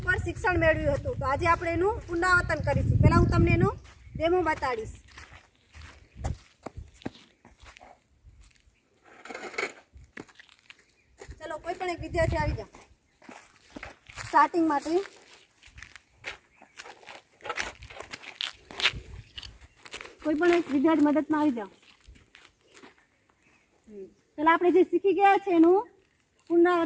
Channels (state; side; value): identical; both; correlation 1.00